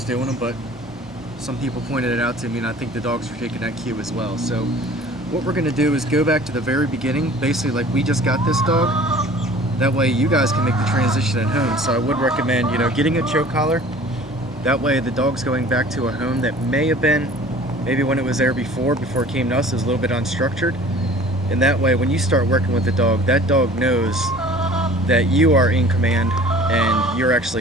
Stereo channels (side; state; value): both; normal; correlation 0.47